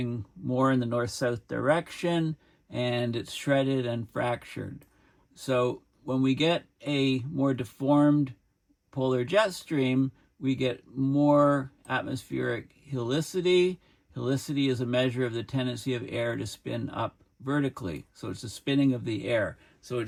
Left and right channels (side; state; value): both; identical; correlation 1.00